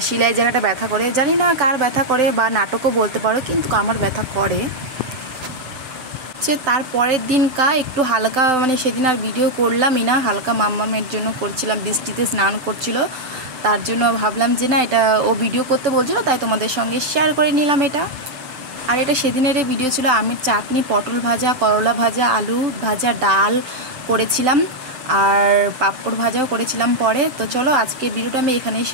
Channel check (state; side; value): late; left; 7.8 ms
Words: সেলাই জায়গাটা ব্যথা করে। জানি না কার ব্যথা করে, বা নাটকও বলতে পারো, কিন্তু আমার ব্যথা করে। তার পরের দিন একটু হালকা, মানে সেদিন আর ভিডিও করলামই না, হালকা মাম্মামের জন্য করছিলাম, বৃষ্টিতে স্নান করছিল, তার জন্য ভাবলাম যে না এটা ও ভিডিও করতে বলছিল, তাই তোমাদের সঙ্গে শেয়ার করে নিলাম এটা। আর এটা সেদিনের ভিডিও ছিল। আমের চাটনি, পটল ভাজা, করলা ভাজা, আলু ভাজা, ডাল করেছিলাম, আর পাঁপড় ভাজাও করেছিলাম পরে। তো চলো আজকে ভিডিওটা আমি এখানেই